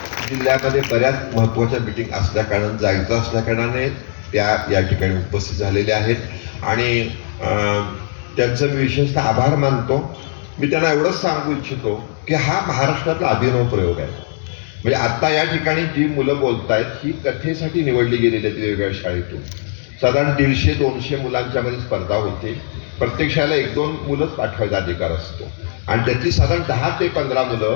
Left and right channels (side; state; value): right; silent; digital silence